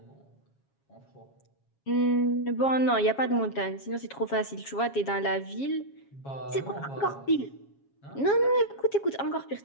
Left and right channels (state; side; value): late; right; 7.3 ms